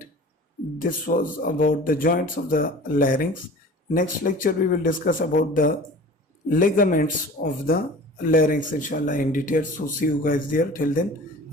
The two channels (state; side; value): normal; both; correlation 0.41